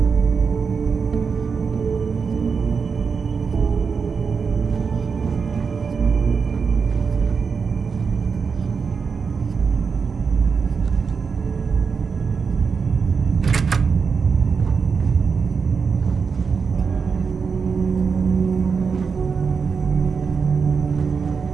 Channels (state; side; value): quieter; left; 5.6 dB